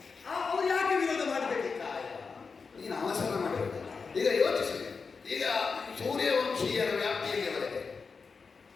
ಅವರು ಯಾಕೆ ವಿರೋಧ ಮಾಡಬೇಕು? ನೀನು ಅವಸರ ಮಾಡಬೇಕು. ಈಗ ಯೋಚಿಸಿ, ಈಗ ಸೂರ್ಯವಂಶೀಯರ ವ್ಯಾಪ್ತಿಯಲ್ಲಿ ಬರುತ್ತೆ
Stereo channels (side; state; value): right; quieter; 5.0 dB